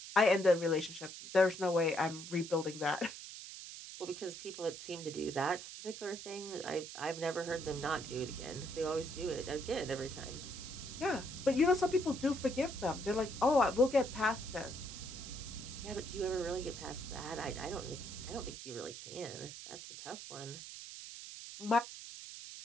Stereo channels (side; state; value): right; noise; hiss, 11 dB below the sound